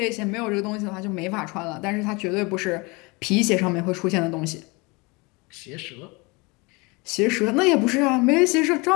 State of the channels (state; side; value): quieter; right; 26.7 dB